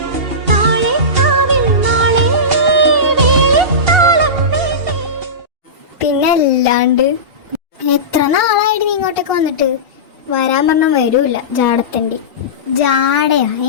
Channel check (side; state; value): left; late; 2.8 ms